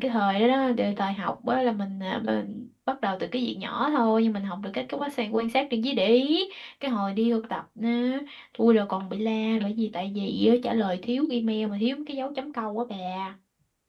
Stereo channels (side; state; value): both; identical; correlation 1.00